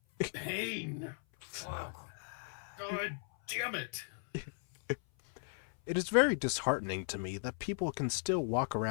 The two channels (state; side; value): silent; right; 53 dB below the other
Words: pain! Fuck. God damn it! it is very disheartening to me that people can still walk